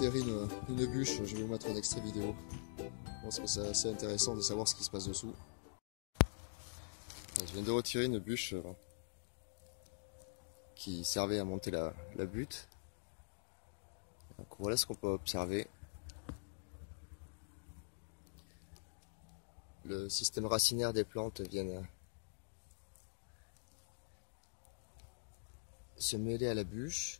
une bûche, je vais vous mettre un extrait vidéo. Je pense que c'est assez intéressant de savoir ce qui se passe dessous. Je viens de retirer une bûche qui servait à monter la butte. Donc voilà ce qu'on peut observer. Le système racinaire des plantes vient se mêler à la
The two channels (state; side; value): silent; right; digital silence